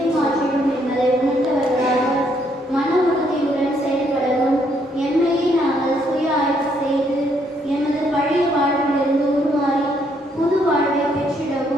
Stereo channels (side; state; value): both; normal; correlation 0.71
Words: மாற்றிடும் என்பதை உணர்ந்தவர்களாக மன உறுதியுடன் செயல்படவும், எம்மையே நாங்கள் சுய ஆய்வு செய்து எமது பழைய வாழ்விலிருந்து உருமாறி புது வாழ்வை